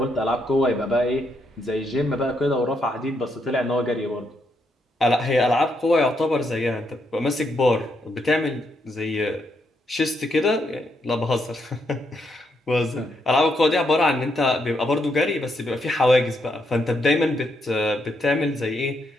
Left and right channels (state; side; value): normal; both; correlation 0.78